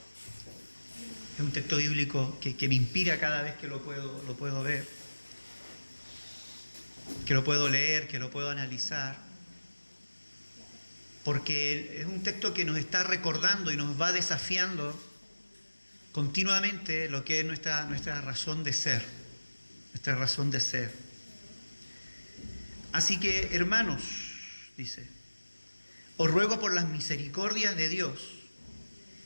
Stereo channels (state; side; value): inverted; both; correlation -1.00